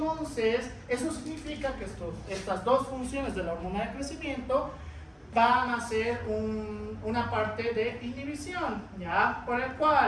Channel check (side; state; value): both; identical; correlation 1.00